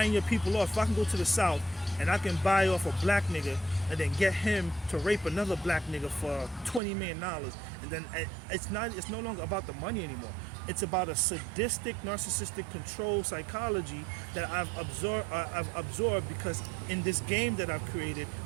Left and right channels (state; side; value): drops out; left; at 6.8 s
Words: your people off, if I can go to the South and I can buy off a black nigga and then get him to rape another black nigga for $20 million, and then it's no longer about the money anymore. It's about a sadistic, narcissistic control psychology that I've absorbed because in this game that I've created,